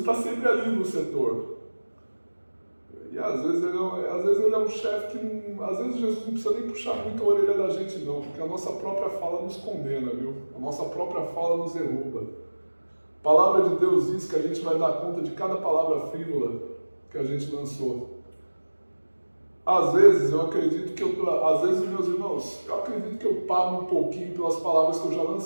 sempre ali no setor. E às vezes ele é um chefe que, às vezes Jesus não precisa nem puxar muito a orelha da gente não, porque a nossa própria fala nos condena, viu? A nossa própria fala nos derruba. A palavra de Deus diz que a gente vai dar conta de cada palavra frívola que a gente lançou. Às vezes eu acredito que às vezes, meus irmãos, eu acredito que eu pago um pouquinho pelas palavras que eu já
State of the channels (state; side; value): inverted; both; correlation -1.00